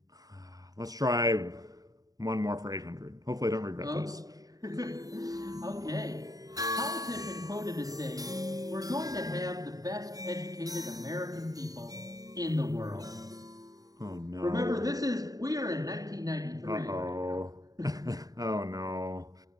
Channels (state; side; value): late; left; 0.18 ms